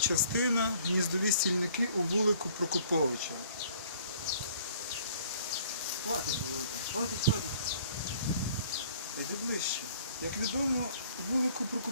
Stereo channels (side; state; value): both; inverted; correlation -0.56